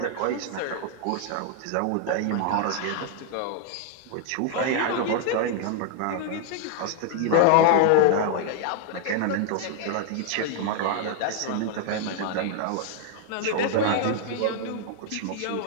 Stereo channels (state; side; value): different; both; correlation 0.00